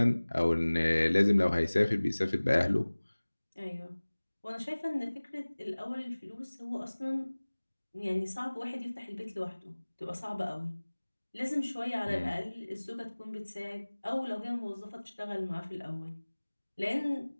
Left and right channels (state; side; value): inverted; both; correlation -1.00